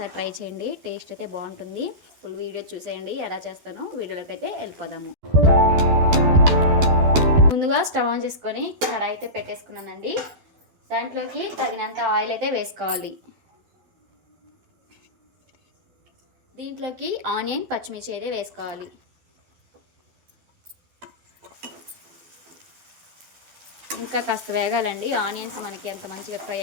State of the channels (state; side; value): late; left; 12 ms